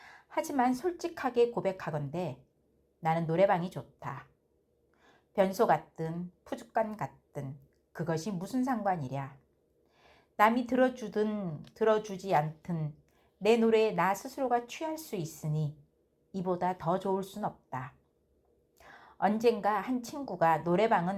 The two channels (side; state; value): both; identical; correlation 1.00